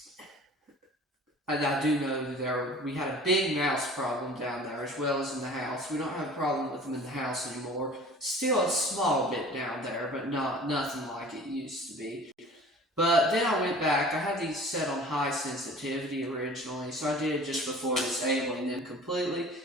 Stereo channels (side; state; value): both; normal; correlation 0.45